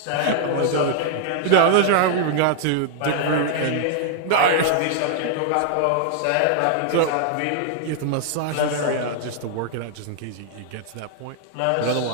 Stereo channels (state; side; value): different; both; correlation 0.00